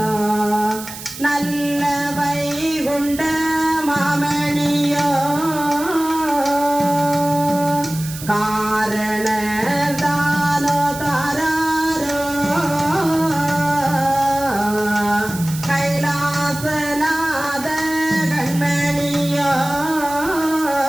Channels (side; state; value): right; noise; hiss, 12 dB below the sound